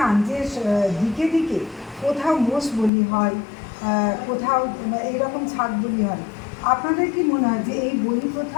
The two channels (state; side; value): drops out; right; at 2.9 s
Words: যে দিকে দিকে কোথাও মোষ বলি হয়, কোথাও এইরকম ছাগ বলি হয়, আপনাদের কি মনে হয় যে এই বলি প্রথা